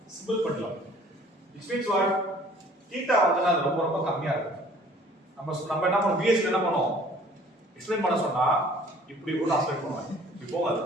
simple pendulum. Which means what? Theta வந்து ரொம்ப ரொம்ப கம்மியா இருக்கு. நம்ம என்ன பண்ணோம், VS என்ன பண்ணோம், எக்ஸ்பிளைன் பண்ண சொன்னா இப்படி கூட ஆஸ்பெக்ட் பண்ணுவாங்க. இப்போ அது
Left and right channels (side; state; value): both; normal; correlation 0.53